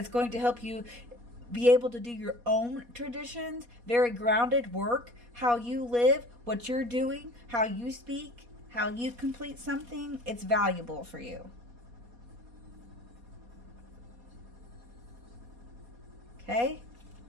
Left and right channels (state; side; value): late; left; 4.2 ms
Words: going to help you be able to do your own traditions, very grounded work, how you live, what you're doing, how you speak, how you complete something, it's valuable for you. Okay?